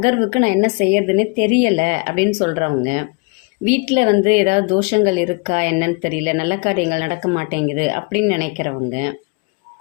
நான் என்ன செய்யறதுன்னு தெரியலை அப்படின்னு சொல்கிறவங்க, வீட்டில் ஏதாவது தோஷங்கள் இருக்கா என்னன்னு தெரியல, நல்ல காரியங்கள் நடக்க மாட்டேங்குது அப்படின்னு நினைக்கிறவங்க,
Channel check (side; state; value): right; quieter; 30.6 dB